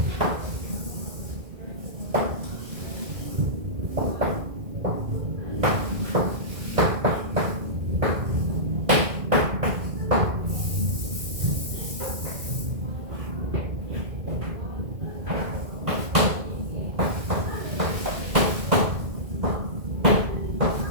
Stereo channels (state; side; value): late; left; 2.1 ms